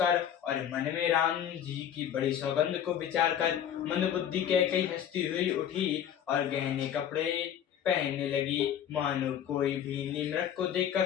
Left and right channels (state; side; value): quieter; right; 9.6 dB